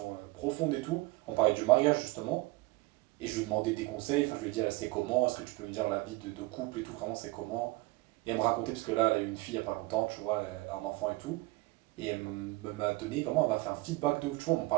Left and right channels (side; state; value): left; quieter; 21.5 dB